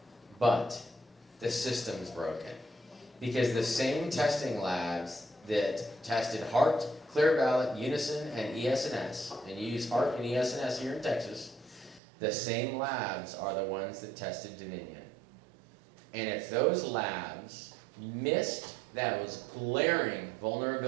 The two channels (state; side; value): drops out; left; at 12.0 s